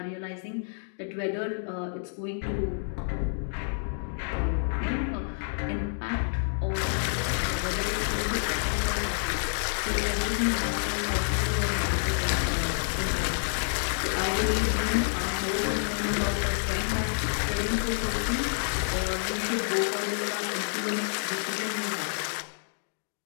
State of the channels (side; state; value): right; silent; digital silence